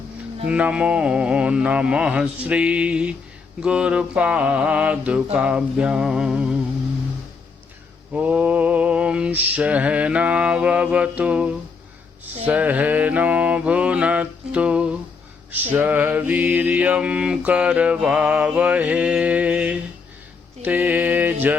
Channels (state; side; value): quieter; right; 4.9 dB